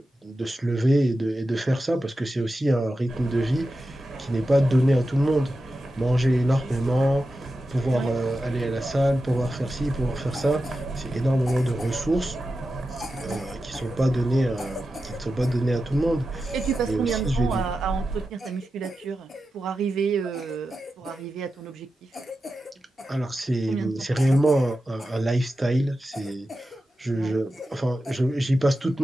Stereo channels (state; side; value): normal; both; correlation 0.91